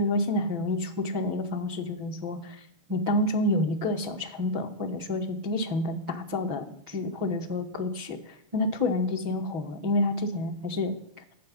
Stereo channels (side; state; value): left; late; 6.1 ms